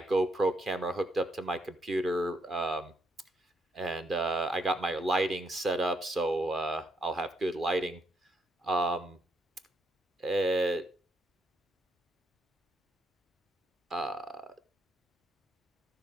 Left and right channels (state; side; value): normal; both; correlation 0.76